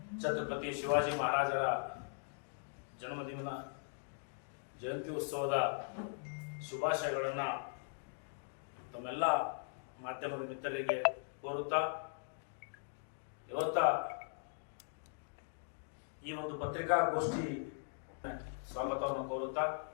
ಛತ್ರಪತಿ ಶಿವಾಜಿ ಮಹಾರಾಜರ ಜನ್ಮದಿನ ಜಯಂತಿ ಉತ್ಸವದ ಶುಭಾಶಯಗಳನ್ನು ತಮ್ಮೆಲ್ಲ ಮಾಧ್ಯಮದ ಮಿತ್ರರಿಗೆ ಕೋರುತ್ತಾ ಇವತ್ತ ಈ ಒಂದು ಪತ್ರಿಕಾಗೋಷ್ಠಿ ಸ್ವಾಗತವನ್ನು ಕೋರುತ್ತಾ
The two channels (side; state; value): right; silent; digital silence